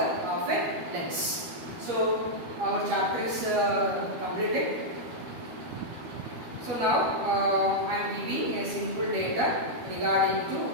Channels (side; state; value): left; late; 13 ms